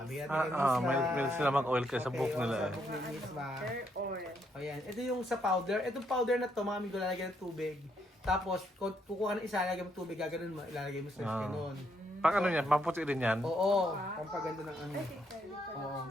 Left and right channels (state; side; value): normal; both; correlation 0.75